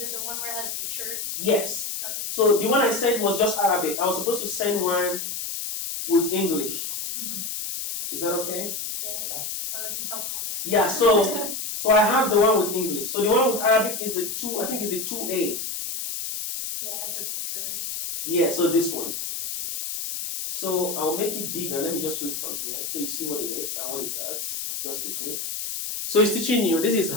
the one where it has pictures? Yes. Okay. So the one I sent was just Arabic. I was supposed to send one with English. Mm-hmm. Is that okay? Yeah. That would be helpful. Yeah, so I have the one with English. So the one with Arabic is the 2, I think is the 2A. Yeah, it has the pictures. Yeah, so this one. So I'll make it bigger. Let me just read from here so you see what it is and what it does. Just quickly. So it's teaching you, this is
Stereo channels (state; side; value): noise; left; hiss, 4 dB below the sound